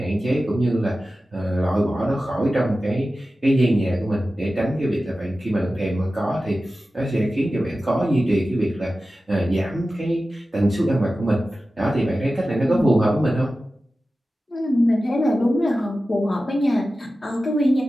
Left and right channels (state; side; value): normal; both; correlation 0.94